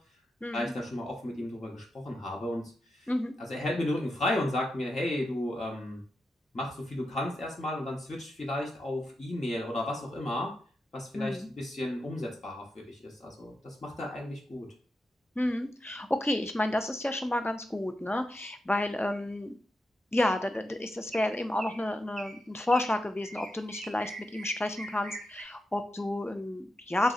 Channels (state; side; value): normal; both; correlation 0.87